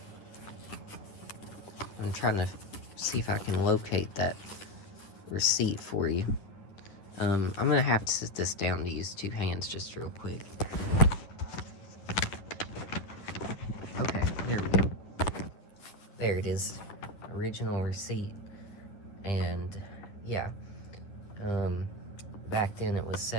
I'm trying to see if I can locate that receipt for you. I'm gonna have to sit this down to use two hands just real quick. Okay, there we go. There it is. Original receipt. And yeah, back then it was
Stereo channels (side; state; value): right; late; 9.6 ms